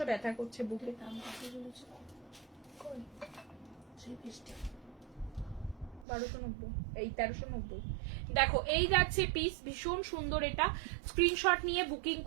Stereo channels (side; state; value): left; drops out; at 6.1 s